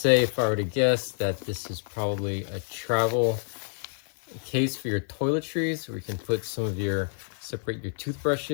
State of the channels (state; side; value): silent; right; 59 dB below the other